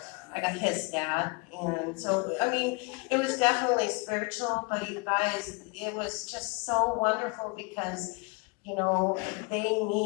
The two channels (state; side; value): quieter; right; 29.9 dB